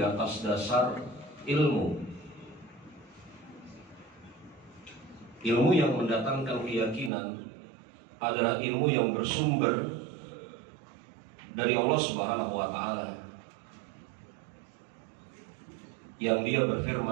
atas dasar ilmu. Ilmu yang mendatangkan keyakinan adalah ilmu yang bersumber dari Allah Subhanahu wa taala, yang Dia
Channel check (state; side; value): drops out; left; at 7.1 s